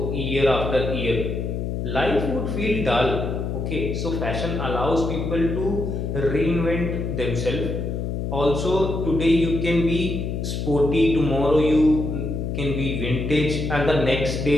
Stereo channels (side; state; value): left; noise; hum, 3 dB below the sound